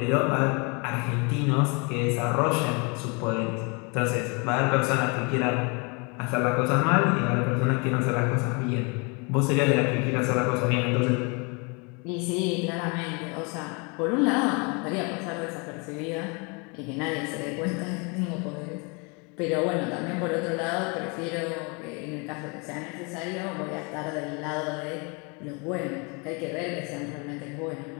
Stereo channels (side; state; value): right; quieter; 31.8 dB